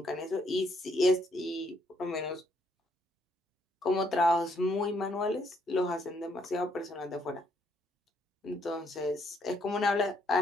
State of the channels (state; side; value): normal; both; correlation 0.71